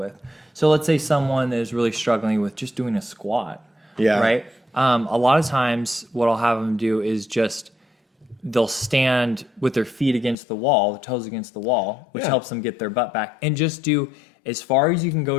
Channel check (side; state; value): right; drops out; at 10.4 s